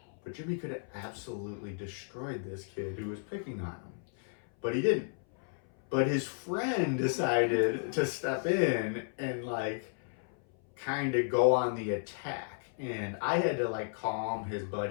but Jimmy could have absolutely destroyed this kid who was picking on him. But he didn't. But his friend decided to step in and kind of go on the attack. And I had to calm his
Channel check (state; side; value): silent; right; 56 dB below the other